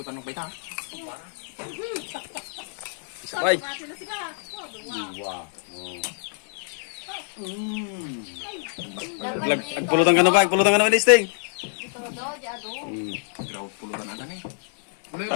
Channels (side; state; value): right; silent; 61 dB below the other